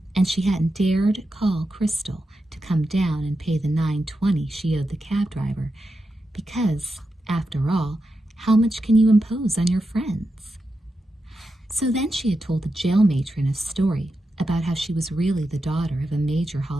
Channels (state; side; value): normal; both; correlation 0.88